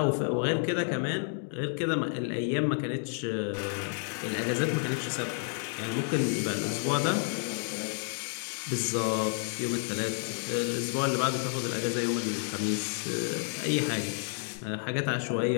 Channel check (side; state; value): right; silent; 58 dB below the other